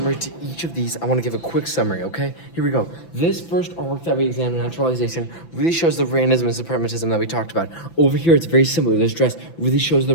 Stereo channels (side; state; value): right; late; 5.9 ms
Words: to each of these, I want to give a quick summary, okay? Here we go. This first artwork that we examined, naturalization, really shows the Randism and separatism that we talked about. Over here, it's very similar. This dress really shows the